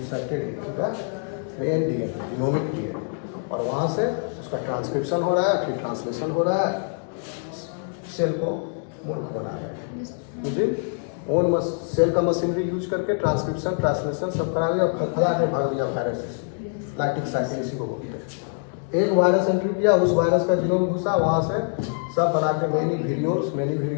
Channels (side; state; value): right; silent; 56 dB below the other